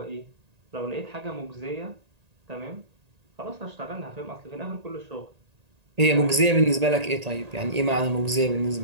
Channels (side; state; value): left; late; 1.8 ms